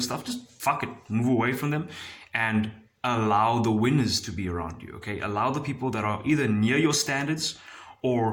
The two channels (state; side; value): identical; both; correlation 1.00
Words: stuff, just fuck it, move away from them and allow the winners to be around you, okay? Allow the people that are either near your standards